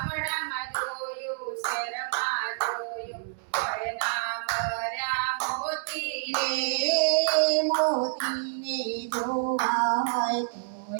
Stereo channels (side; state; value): left; silent; digital silence